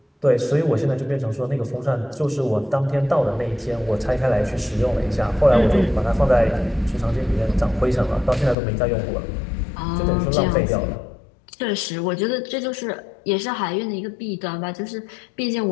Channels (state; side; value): drops out; right; at 8.6 s